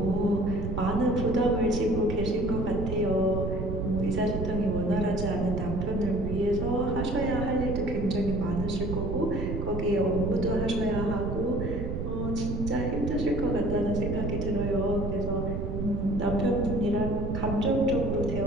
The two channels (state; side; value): noise; right; rumble, 3 dB below the sound